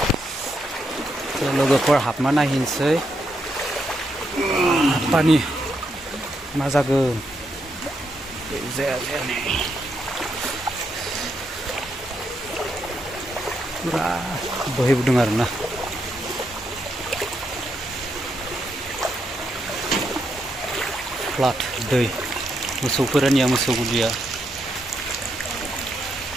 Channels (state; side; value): normal; both; correlation 0.80